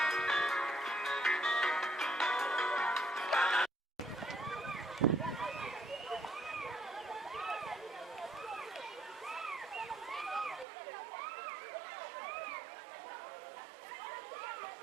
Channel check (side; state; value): left; drops out; at 10.7 s